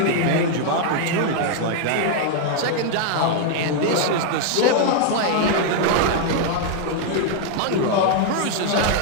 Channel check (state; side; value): different; both; correlation 0.00